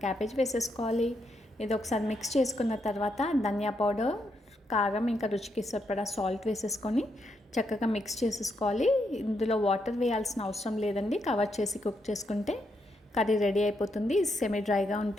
క్యాబేజ్ వేసేసుకోవాలి. ఇది ఒకసారి మిక్స్ చేసుకున్న తర్వాత ధనియా పౌడర్, కారం, ఇంకా రుచికి సరిపడా సాల్ట్ వేసేసుకొని చక్కగా మిక్స్ చేసేసుకోవాలి. ఇందులో వాటర్ వేయాల్సిన అవసరం లేదండి. కవర్ చేసి కుక్ చేసుకుంటే కర్రీ రెడీ అయిపోతుంది. సెమీ డ్రైగా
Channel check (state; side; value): normal; both; correlation 0.80